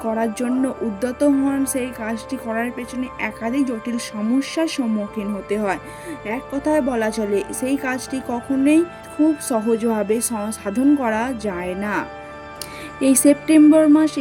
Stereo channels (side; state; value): both; identical; correlation 1.00